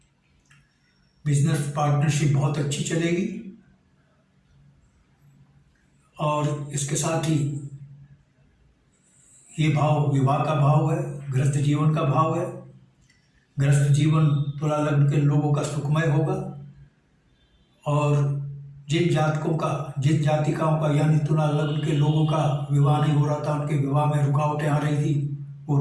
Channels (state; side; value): identical; both; correlation 1.00